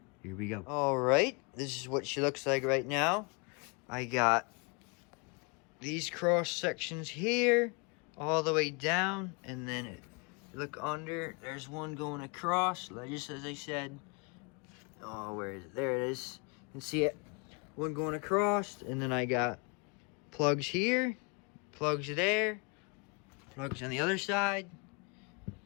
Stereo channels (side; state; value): right; quieter; 32.1 dB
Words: Here we go. All right, this is what she looks like right now. I got these cross sections here all the way down, and then look under, there's one going across, just as I said. Oh, where is it? There it is. You can see it. One going across, and then I got plugs here, plugs there, plugs on the other side.